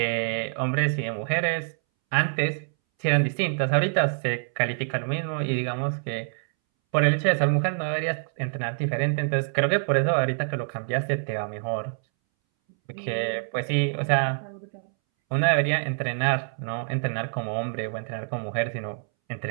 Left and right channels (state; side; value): silent; left; 61 dB below the other